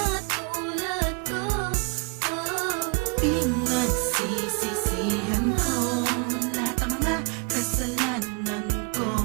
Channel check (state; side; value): quieter; left; 31.3 dB